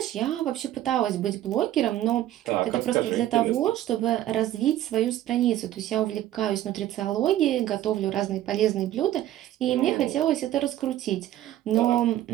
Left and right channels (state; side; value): quieter; left; 13.2 dB